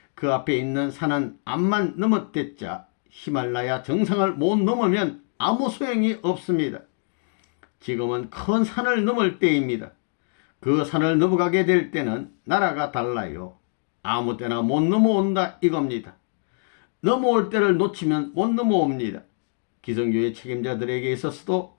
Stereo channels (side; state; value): right; silent; 62 dB below the other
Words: 그 앞에 있는 산은 암만 넘었댔자 히말라야 정상을 못 넘으면 아무 소용이 없습니다. 지금은 큰 산을 넘을 때입니다. 그 산을 넘어가게 될 때는 나라가 달라요. 아무 때나 못 넘어온다 이겁니다. 넘어올 때를 놓치면 못 넘어옵니다. 기성교회 책임자들에게 있어서도